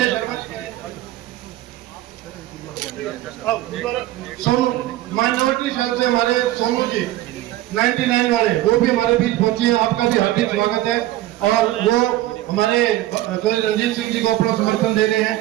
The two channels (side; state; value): left; quieter; 15.3 dB